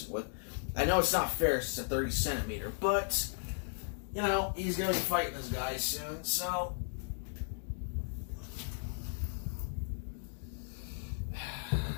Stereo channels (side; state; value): right; silent; digital silence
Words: with. I know it's not fair, it's a 30 centimeter, but he's gonna be fighting this guy soon, so